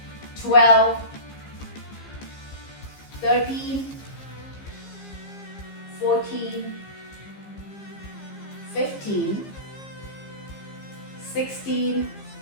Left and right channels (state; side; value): late; right; 15 ms